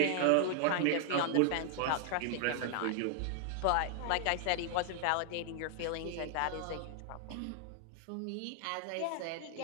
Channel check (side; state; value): both; different; correlation 0.00